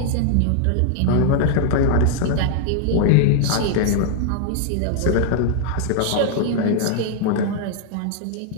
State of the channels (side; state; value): both; different; correlation 0.00